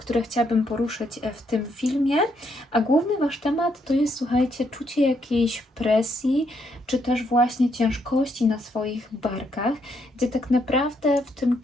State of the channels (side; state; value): both; normal; correlation 0.75